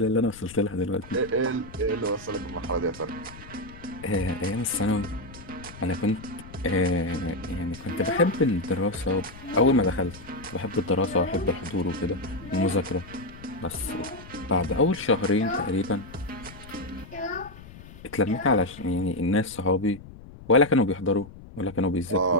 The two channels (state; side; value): noise; left; rumble, 17 dB below the sound